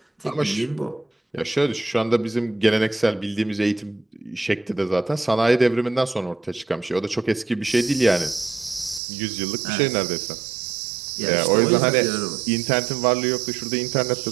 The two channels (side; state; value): left; drops out; at 9.0 s